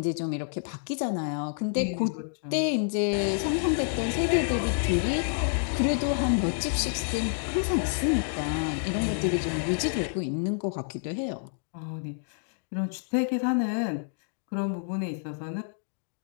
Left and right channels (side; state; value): right; silent; digital silence